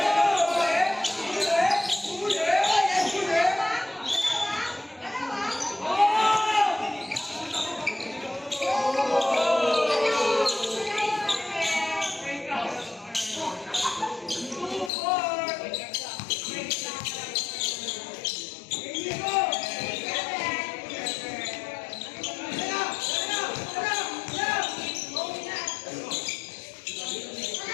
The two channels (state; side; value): drops out; right; at 14.9 s